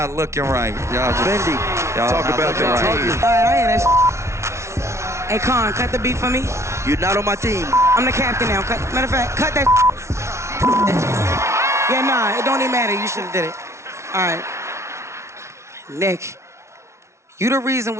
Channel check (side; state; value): left; late; 0.13 ms